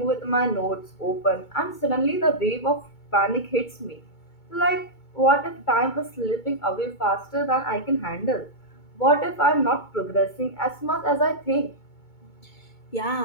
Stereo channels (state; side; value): late; right; 2.2 ms